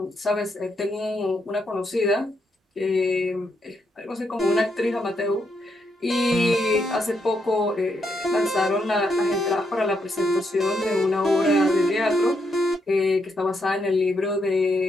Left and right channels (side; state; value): both; normal; correlation 0.79